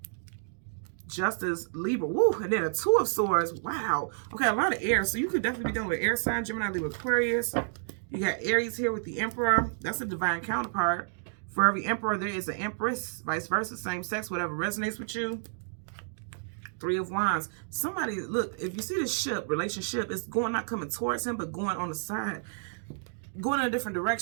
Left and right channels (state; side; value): silent; left; digital silence